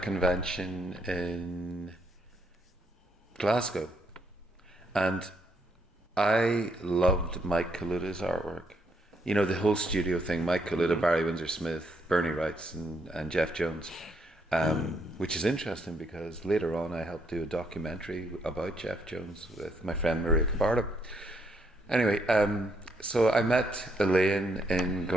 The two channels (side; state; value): both; normal; correlation 0.73